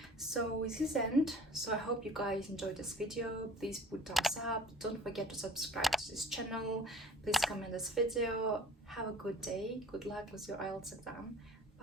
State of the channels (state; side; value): normal; both; correlation 0.47